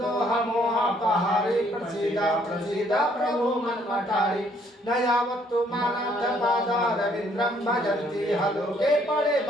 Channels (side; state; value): both; normal; correlation 0.65